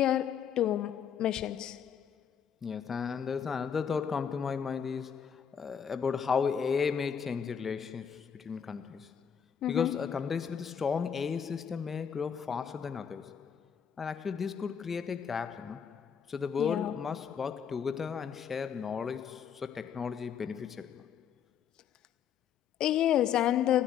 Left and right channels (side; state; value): right; quieter; 7.9 dB